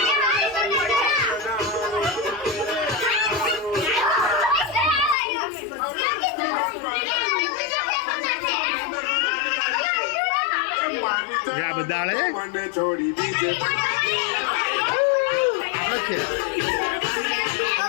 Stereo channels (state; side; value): drops out; right; at 5.2 s